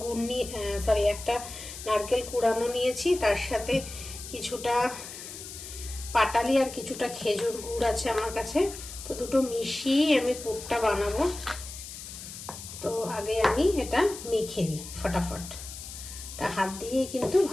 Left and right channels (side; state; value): left; noise; hiss, 12 dB below the sound